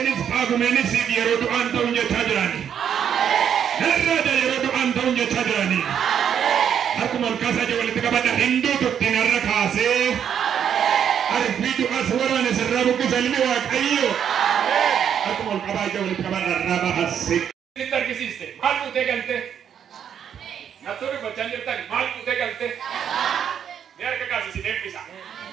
Faagumenis yeroo du'aan ta'uun jechaa jirani. Narraada yeroo du'aan ta'uun jechaa jirani. Akkuma olkaasaa jee walitti qabadha hinduu tuttiin har'a kaasee. Arfii du'as waraana sirraa buqqisa ilmi Waaqayyo. Akkuma olqabaa jee walitti qabadha irraa bahase. Sitti argisiiste maal fuutee galte? Naturi bochaan jirtan maal fuutee galte? Ni harka kaasisiin eebbisa.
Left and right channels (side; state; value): left; quieter; 8.6 dB